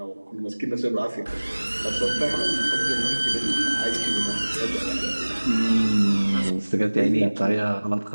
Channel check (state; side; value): inverted; both; correlation -1.00